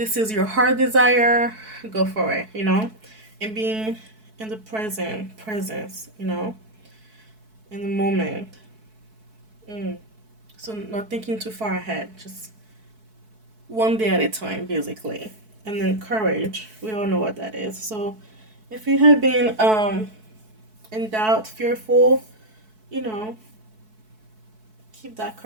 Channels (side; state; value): left; late; 4.6 ms